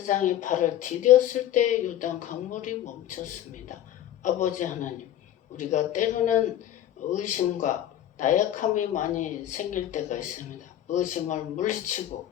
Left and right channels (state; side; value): quieter; right; 11.9 dB